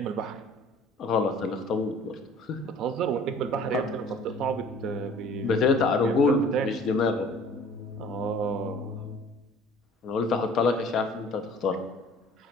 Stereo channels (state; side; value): normal; both; correlation 0.50